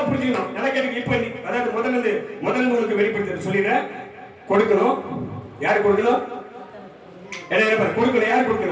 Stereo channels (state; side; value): identical; both; correlation 1.00